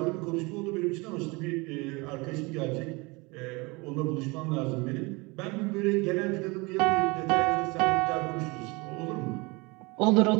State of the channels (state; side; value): quieter; left; 25.9 dB